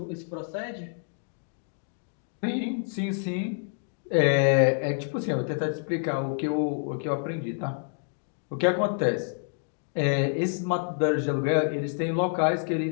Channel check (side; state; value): right; silent; digital silence